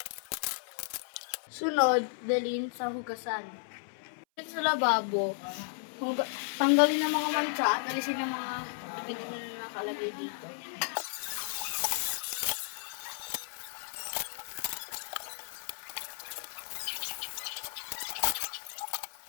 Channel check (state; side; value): silent; right; 55 dB below the other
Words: Sunod, dalhin sa hugasan. Sa lababo, tanggalin ang mga mancha at alisin ang mga dumi na nakalagay dito.